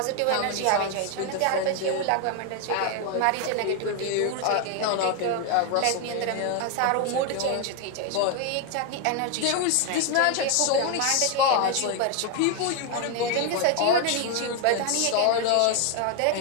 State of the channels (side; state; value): both; different; correlation 0.01